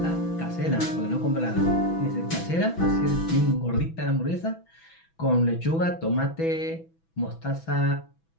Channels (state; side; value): late; right; 6.1 ms